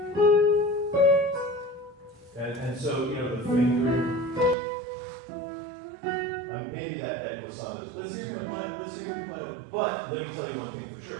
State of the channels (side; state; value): left; drops out; at 4.5 s